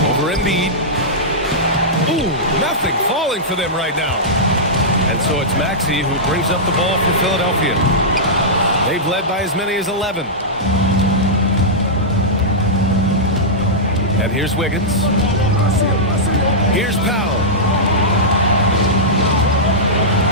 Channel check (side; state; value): both; normal; correlation -0.12